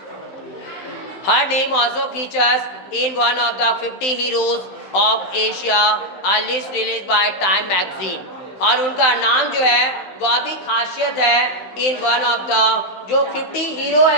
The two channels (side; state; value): right; late; 16 ms